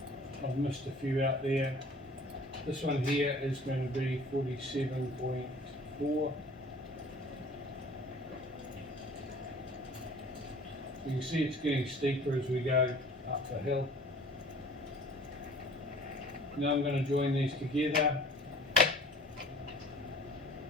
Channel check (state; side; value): normal; both; correlation 0.48